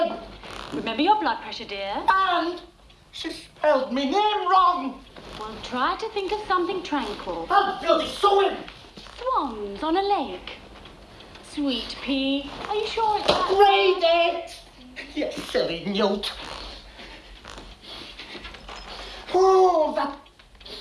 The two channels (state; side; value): identical; both; correlation 1.00